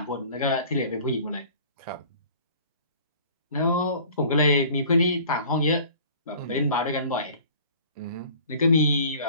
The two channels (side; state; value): both; inverted; correlation -0.48